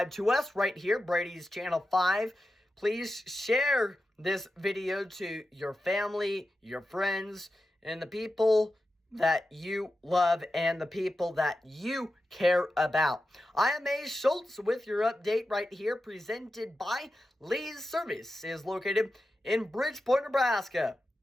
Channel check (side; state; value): both; normal; correlation 0.91